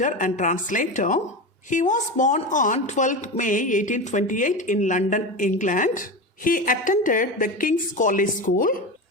and translator. He was born on 12th May 1828 in London, England. He attended the King's College School.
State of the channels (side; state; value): both; normal; correlation 0.22